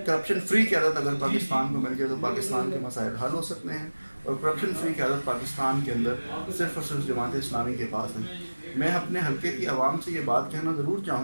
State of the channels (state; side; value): inverted; both; correlation -1.00